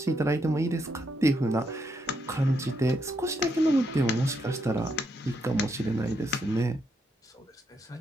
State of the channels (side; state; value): both; normal; correlation 0.78